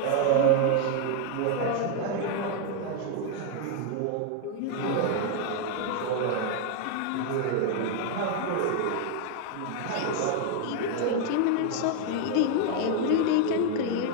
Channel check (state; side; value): different; both; correlation 0.00